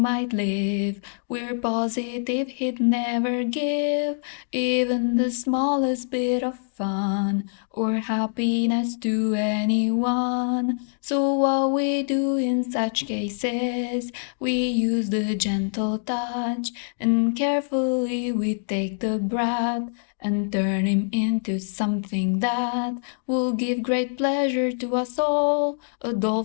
live, we're positive he'd never give even the smallest bit of fun or happiness to anyone. So what we do in such cases, we use the gentle touch, and carefully we take the brat and turn him into something that will give great pleasure to us all. A doll,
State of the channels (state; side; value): silent; right; digital silence